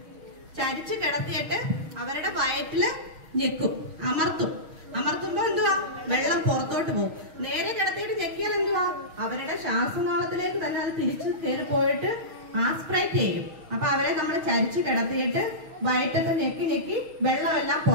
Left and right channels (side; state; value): left; late; 6.4 ms